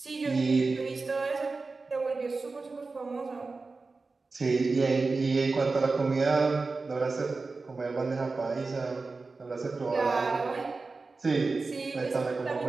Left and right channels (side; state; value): left; quieter; 3.9 dB